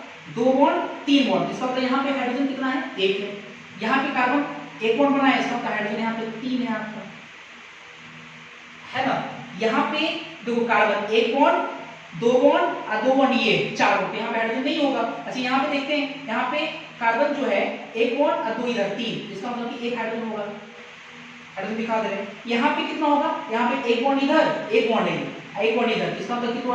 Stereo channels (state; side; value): identical; both; correlation 1.00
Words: दो बॉन्ड तीन बॉन्ड, इसका मतलब यहाँ पे हाइड्रोजन कितना है एक है। यहाँ पे कार्बन एक बॉन्ड बनाया, इसका मतलब हाइड्रोजन यहाँ पे तीन है आपका, है ना। यहाँ पे देखो कार्बन एक बॉन्ड दो बॉन्ड और दो बॉन्ड ये चार बॉन्ड, यहाँ पे हाइड्रोजन नहीं होगा। अच्छा यहाँ पे देखते हैं, यहाँ पे कार्बन जो है एक बॉन्ड और दो इधर तीन, इसका मतलब कि एक हाइड्रोजन होगा, हाइड्रोजन दिखा दे रहे हैं। यहाँ पे कितना होगा, यहाँ पे एक बॉन्ड इधर एक बॉन्ड एक बॉन्ड इधर, इसका मतलब कि दो